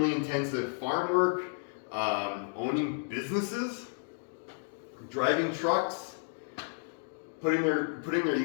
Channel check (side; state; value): right; silent; 56 dB below the other